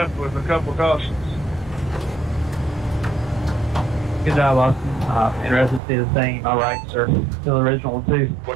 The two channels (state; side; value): drops out; left; at 5.8 s